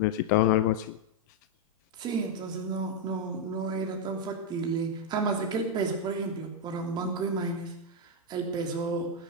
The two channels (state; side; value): normal; both; correlation 0.00